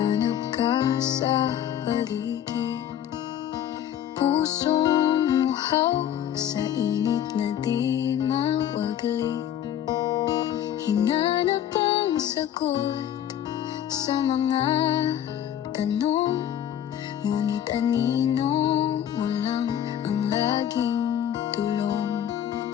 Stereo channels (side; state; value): right; quieter; 10.5 dB